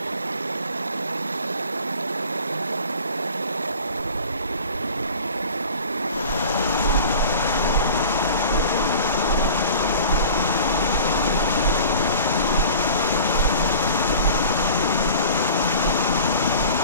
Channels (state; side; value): inverted; both; correlation -0.41